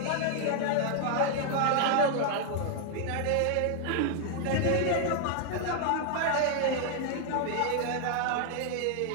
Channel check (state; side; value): different; both; correlation 0.00